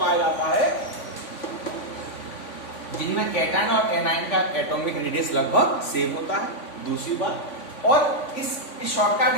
जाता है जिनमें कैटायन और एनायन का एटॉमिक रेडियस लगभग सेम होता है। दूसरी बात, और इस शॉर्टकट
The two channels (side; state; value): right; late; 3.5 ms